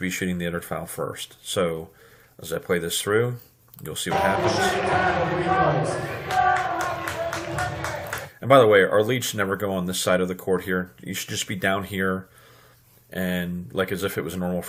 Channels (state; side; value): identical; both; correlation 1.00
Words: shooting the other foul first. So as I play this through, you'll see what happens. And by the way, our lead should never go on this side of the court here. You should just be down here, and like as if it was a normal